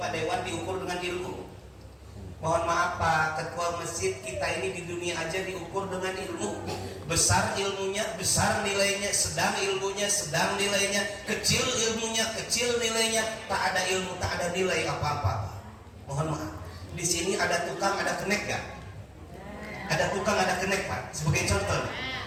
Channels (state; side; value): identical; both; correlation 1.00